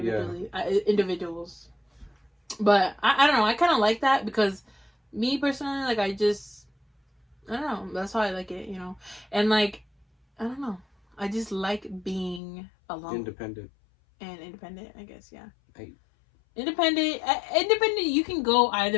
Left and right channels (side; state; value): right; drops out; at 12.4 s